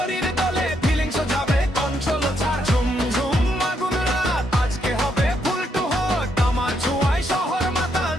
দলে, ফিলিংস যাবে কন্ট্রোল ছাড়। ঝুম ঝুম আগুন রাত, আজকে হবে ফুল টু হট। আমার ছোঁয়ায় শহর মাতাল,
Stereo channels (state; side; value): normal; both; correlation 0.76